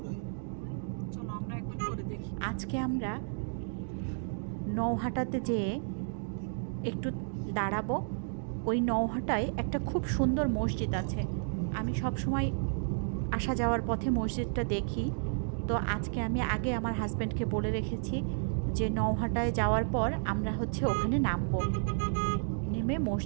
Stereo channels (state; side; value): silent; left; digital silence